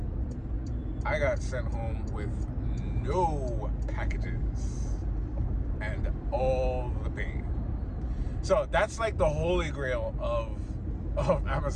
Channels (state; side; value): identical; both; correlation 1.00